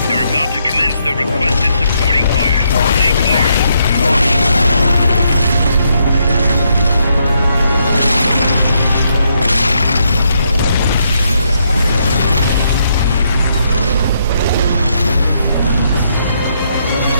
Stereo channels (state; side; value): inverted; both; correlation -0.76